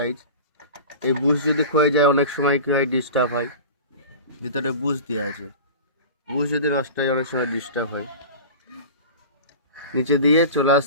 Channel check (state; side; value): inverted; both; correlation -0.34